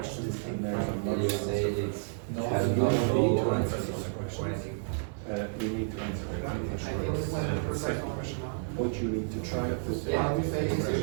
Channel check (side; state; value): left; silent; digital silence